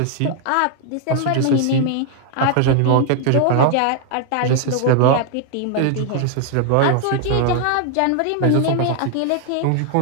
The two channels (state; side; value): different; both; correlation 0.00